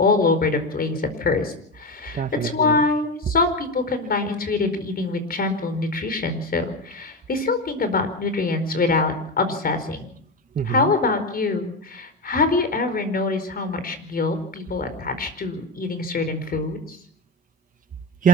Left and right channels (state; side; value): normal; both; correlation 0.17